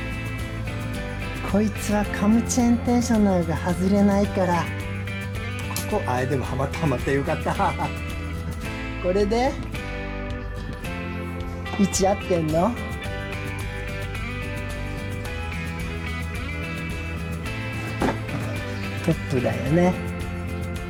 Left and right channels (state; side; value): identical; both; correlation 1.00